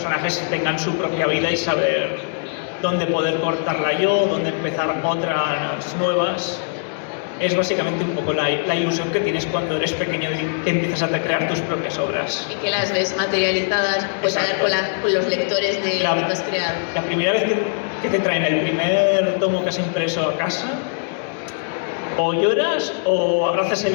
tengan su propia vida y saber dónde poder cortarla yo, dónde empezar otras nuevas. Es básicamente un poco la ilusión que tienes cuando eres pequeño y que empiezas a crear tus propias obras. Y que las ves materializadas, pues hablar con los lectores de lo que has creado. La primera vez que te traen el primer tomo que has impreso a casa, o lloras o abrazas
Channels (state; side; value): silent; right; digital silence